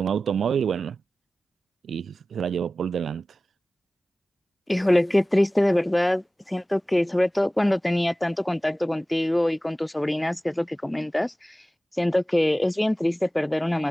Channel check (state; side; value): normal; both; correlation 0.96